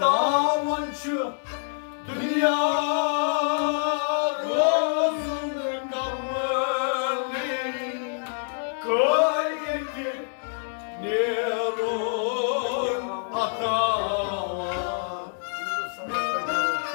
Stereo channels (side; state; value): right; silent; digital silence